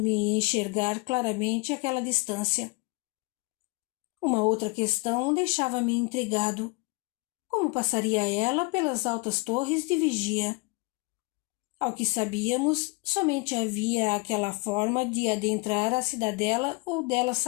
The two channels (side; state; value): right; quieter; 27.0 dB